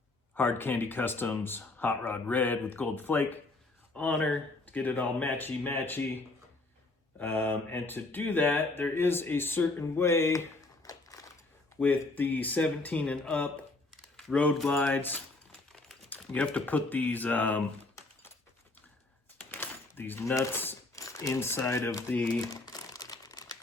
Hard Candy Customs Hot Rod Red with gold flake on her to get it all matchy. And to do that, there is a certain way with the 17 and up road glides. You have to put these nuts inside of the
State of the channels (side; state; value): right; quieter; 3.1 dB